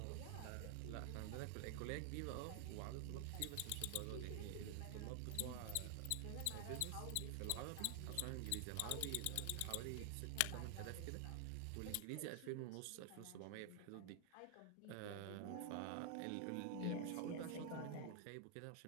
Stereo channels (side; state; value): both; different; correlation 0.00